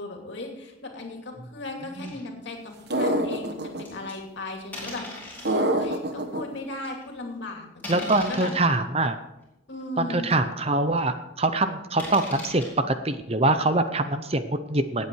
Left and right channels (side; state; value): both; normal; correlation 0.11